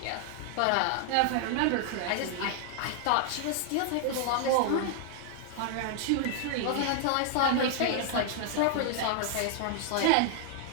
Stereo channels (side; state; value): both; different; correlation 0.00